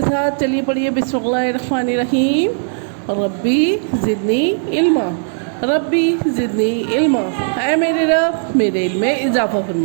साथ। चलिए पढ़िए, बिस्मिल्लाहिर्रहमानिर्रहीम। रब्बी ज़िदनी इल्मा, रब्बी ज़िदनी इल्मा। ऐ मेरे रब मेरे इल्म में इजाफ़ा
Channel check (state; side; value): silent; left; 68 dB below the other